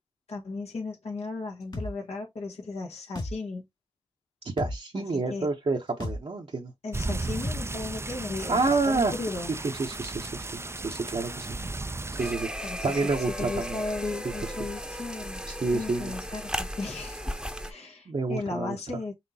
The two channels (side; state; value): both; normal; correlation 0.70